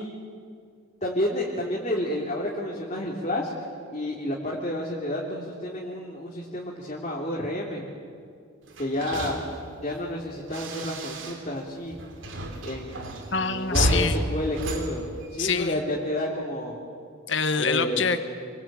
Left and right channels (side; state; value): both; normal; correlation 0.31